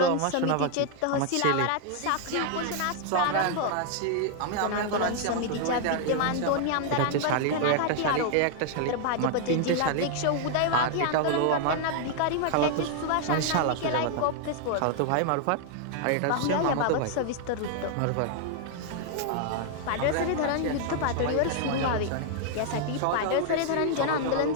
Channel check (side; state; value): both; different; correlation 0.00